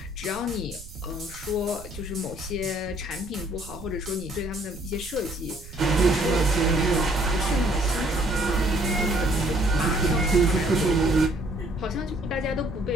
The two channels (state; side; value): noise; right; rumble, 16 dB below the sound